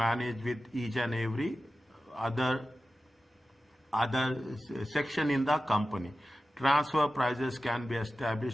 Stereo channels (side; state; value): both; normal; correlation 0.94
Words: with each and every other section in the company. Transfer prices can be